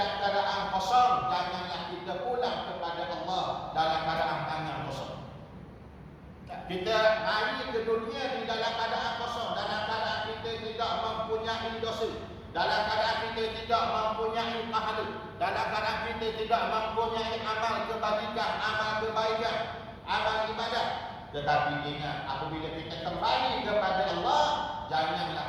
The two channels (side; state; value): both; identical; correlation 1.00